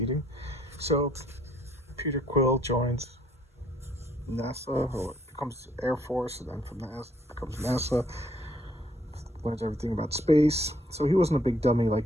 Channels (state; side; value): normal; both; correlation 0.66